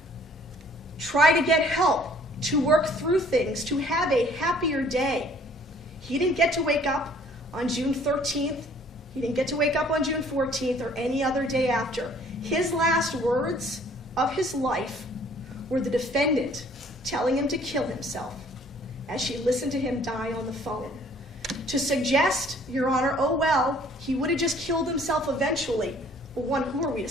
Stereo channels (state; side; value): normal; both; correlation 0.57